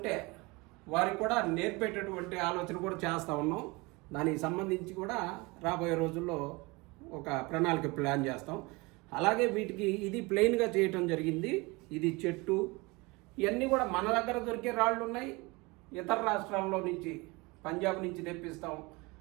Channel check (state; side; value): quieter; left; 25.1 dB